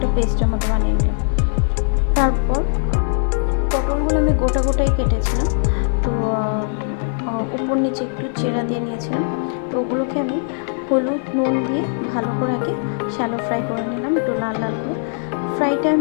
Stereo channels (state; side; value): silent; right; digital silence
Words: পেস্টের মতো বানিয়ে নিলাম। তারপর পটলগুলো আমি গোটাই কেটেছিলাম, তো উপর নিচে একটু চেরা দিয়ে নিয়েছিলাম। তো ওগুলোকে আমি হলুদ নুন দিয়ে ভালো করে আগে শ্যালো ফ্রাই করে নিলাম, একটু লাল লাল করে। ফ্রাইটা